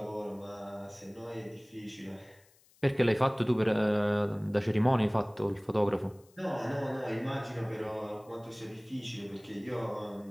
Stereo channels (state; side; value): noise; left; hiss, 30 dB below the sound